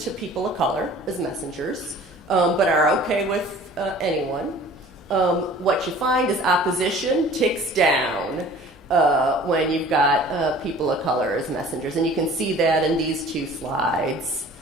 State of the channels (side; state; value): both; normal; correlation 0.47